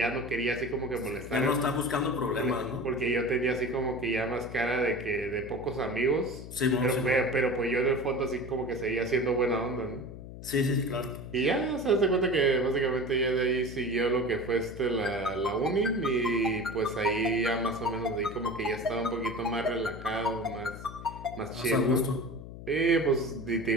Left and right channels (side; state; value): left; noise; hum, 13 dB below the sound